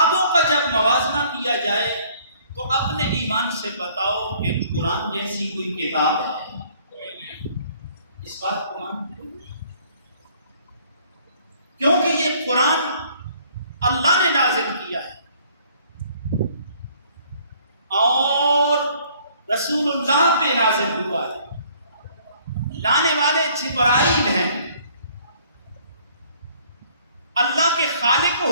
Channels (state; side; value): inverted; both; correlation -0.59